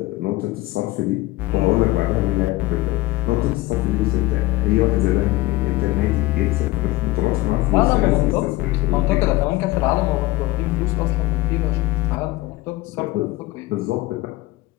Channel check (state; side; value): quieter; right; 18.7 dB